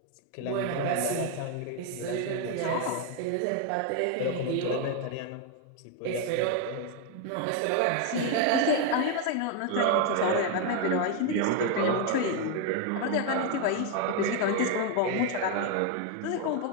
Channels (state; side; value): different; both; correlation 0.01